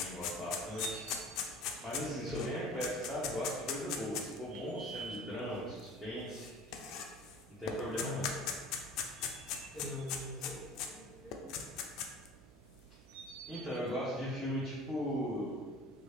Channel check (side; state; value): right; noise; hum, 22 dB below the sound